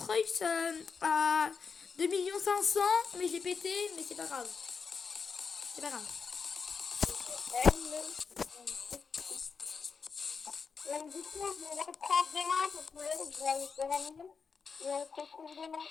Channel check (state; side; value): quieter; right; 5.5 dB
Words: à 2 500 000, mais j'ai pété, mais c'est pas grave. C'est pas grave. Du coup, je vais reprendre demain parce que là, je vais aller dormir. Et on se retrouve demain.